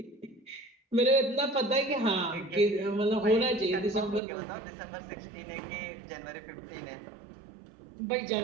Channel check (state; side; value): drops out; left; at 4.2 s